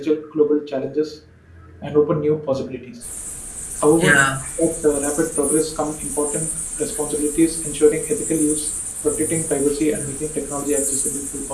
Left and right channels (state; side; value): identical; both; correlation 1.00